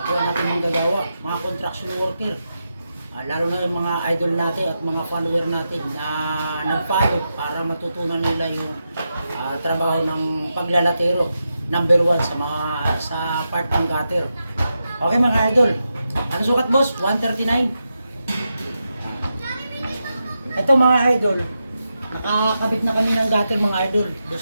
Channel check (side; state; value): both; inverted; correlation -0.88